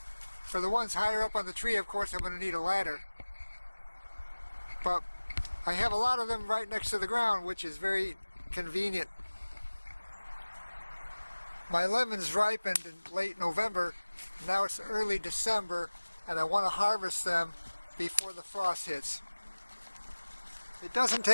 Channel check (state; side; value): inverted; both; correlation -1.00